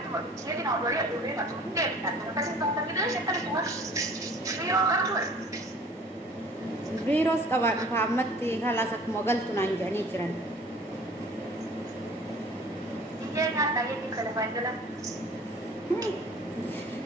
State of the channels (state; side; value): normal; both; correlation 0.48